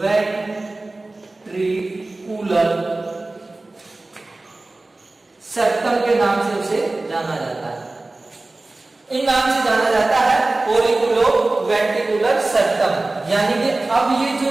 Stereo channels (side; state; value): left; quieter; 3.0 dB